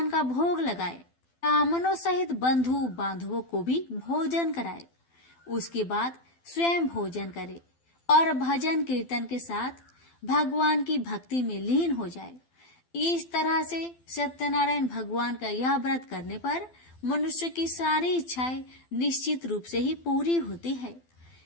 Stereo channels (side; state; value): right; late; 12 ms